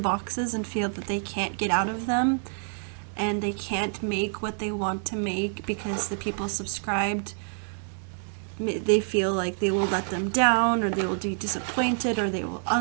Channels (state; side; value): silent; left; digital silence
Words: and feel that they can't get out of them, and they can't make what they want to make because the people subscribed, they feel like they will let them down, or they will be disappointed, or they will